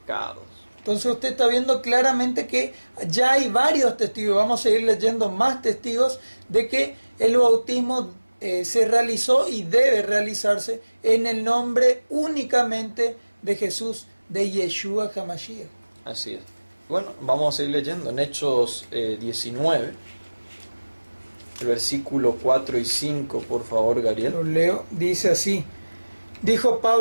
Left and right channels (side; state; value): both; inverted; correlation -1.00